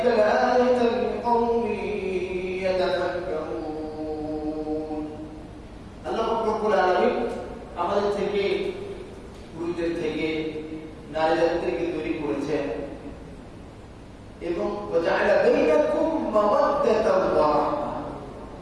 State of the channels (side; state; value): both; identical; correlation 1.00